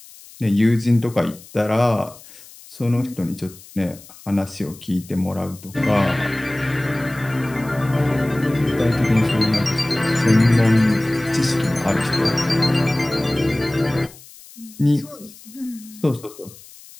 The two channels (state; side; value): noise; left; hiss, 21 dB below the sound